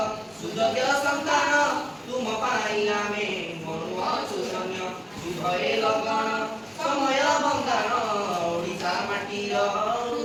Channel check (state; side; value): identical; both; correlation 1.00